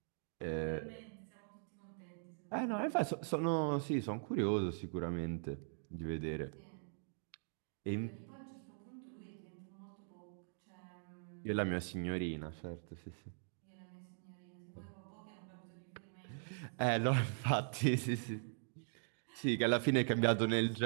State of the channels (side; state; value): left; silent; digital silence